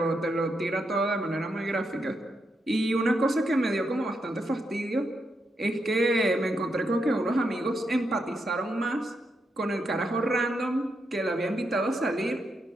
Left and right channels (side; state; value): both; normal; correlation 0.82